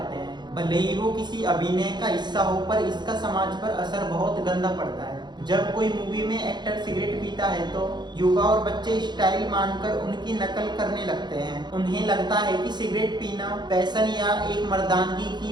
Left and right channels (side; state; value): left; late; 0.21 ms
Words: हैं। भले ही वो किसी अभिनय का हिस्सा हो, पर इसका समाज पर असर बहुत गंदा पड़ता है। जब कोई मूवी में एक्टर सिगरेट पीता है तो युवा और बच्चे स्टाइल मानकर उनकी नकल करने लगते हैं। उन्हें लगता है कि सिगरेट पीना फैशन या एक मर्दानगी की